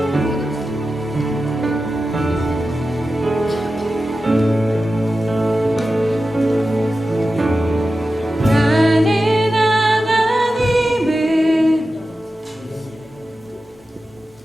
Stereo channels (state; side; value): normal; both; correlation 0.93